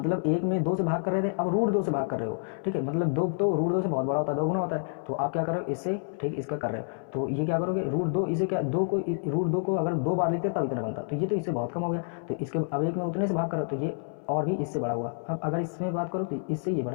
1 में 2 से भाग कर रहे थे, अब √2 से भाग कर रहे हो। ठीक है, मतलब 2 तो √2 से बहुत बड़ा होता है, 2 गुना होता है, तो आप क्या कर रहे हो इससे, ठीक इसका कर रहे हो, तो ये क्या करोगे √2, इसे क्या 2 को √2 को अगर 2 बार लिखते तब इतना बनता, तो ये तो इससे बहुत कम हो गया, तो इसके अब 1 में उतने से भाग कर रहे हो, तो ये और भी इससे बड़ा हुआ। अब अगर इसमें बात करो तो इससे ये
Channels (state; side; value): silent; right; 59 dB below the other